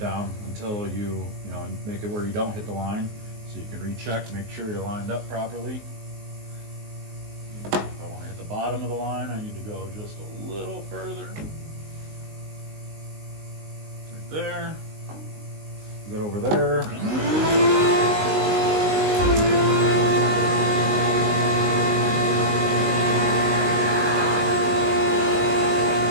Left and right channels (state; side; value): late; left; 19 ms